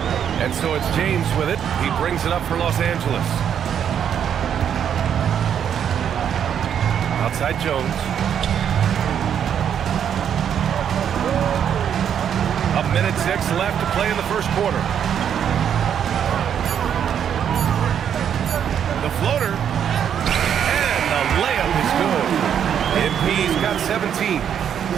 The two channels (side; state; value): left; quieter; 8.7 dB